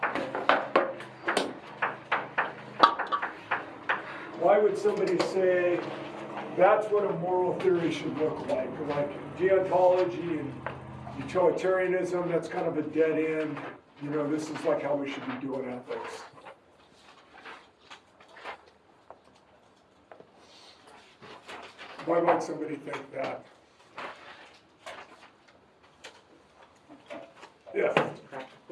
Why would somebody say that's what a moral theory should look like? Like deontology and utilitarianism, that's kind of a dead end. This is like how we should be doing ethics. Why might somebody think that? Yeah.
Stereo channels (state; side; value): identical; both; correlation 1.00